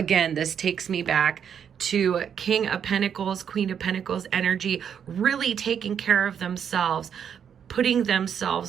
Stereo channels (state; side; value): quieter; left; 8.0 dB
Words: this takes me back to King of Pentacles, Queen of Pentacles energy, really taking care of themselves, putting